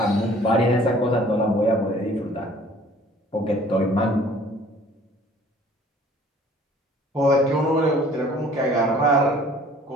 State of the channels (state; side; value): normal; both; correlation 0.53